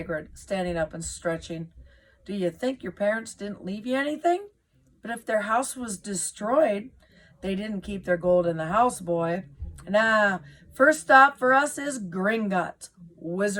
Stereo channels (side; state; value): both; identical; correlation 1.00